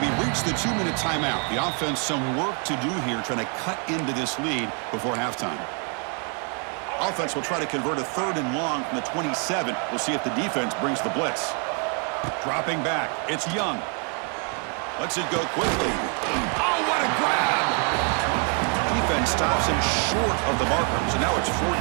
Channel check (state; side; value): quieter; left; 39.0 dB